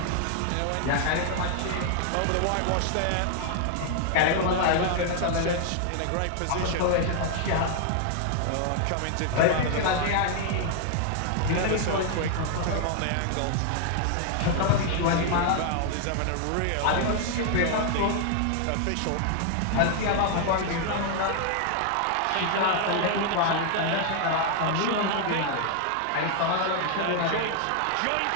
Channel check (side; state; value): both; different; correlation 0.00